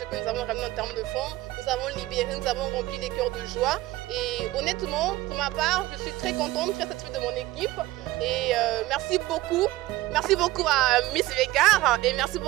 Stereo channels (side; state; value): left; quieter; 17.5 dB